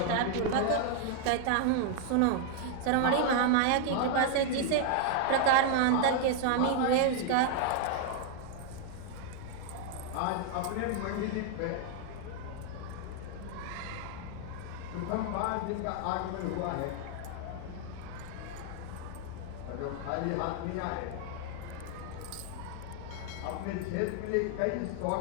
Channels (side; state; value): both; different; correlation 0.00